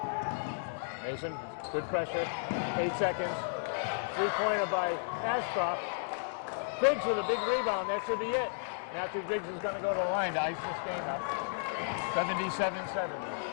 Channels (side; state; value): right; silent; digital silence